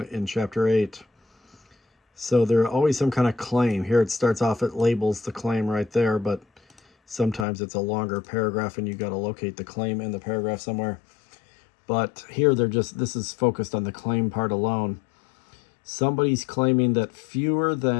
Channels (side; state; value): right; drops out; at 7.5 s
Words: in chapter 8. So there's always some kind of claim. Here it starts off, it labels the claim right there, but sometimes it's a longer paragraph and you got to locate the claim in the paragraph somewhere. But here this is focused on the claim part alone. Somebody's claiming that fewer